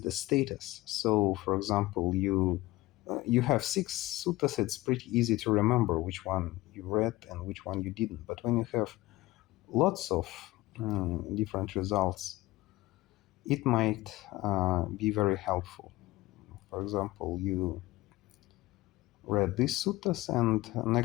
the status. So for example, you have 6 suttas, it's pretty easy to remember which one you read and which one you didn't. But when you have lots of different results, it might be very helpful. For example, you read these suttas, and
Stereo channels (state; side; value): quieter; right; 18.5 dB